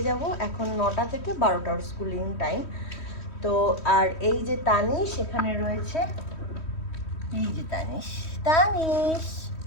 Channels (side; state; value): right; late; 3.1 ms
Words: যাব। এখন 9টা থেকে 12টা ওর স্কুলিং টাইম। তো আর এই যে তানিশ এখানে রয়েছে, এই যে তানিশ, তানিশ,